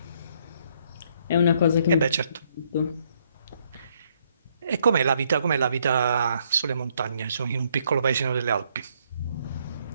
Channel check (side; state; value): both; inverted; correlation -0.70